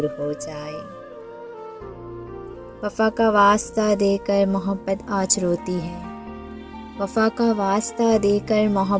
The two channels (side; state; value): both; identical; correlation 1.00